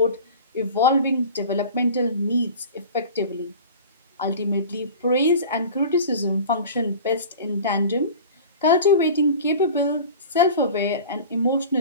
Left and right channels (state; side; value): inverted; both; correlation -0.38